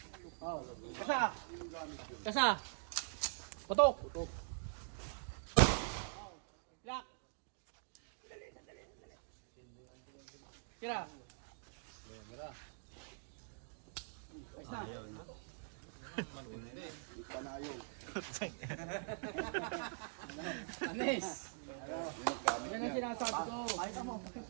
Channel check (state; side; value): silent; left; digital silence